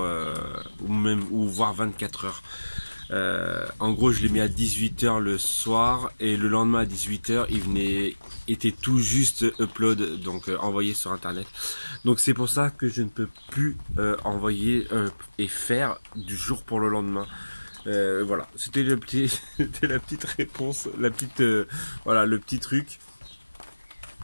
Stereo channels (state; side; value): inverted; both; correlation -1.00